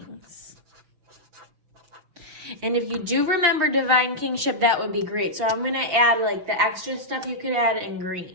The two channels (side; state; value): left; late; 6.0 ms